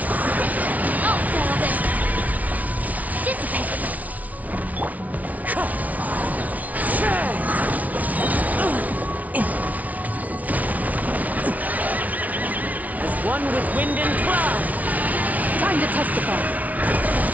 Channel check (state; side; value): late; left; 0.072 ms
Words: I'll settle this. Dissipate. As one with wind and cloud. Time to testify.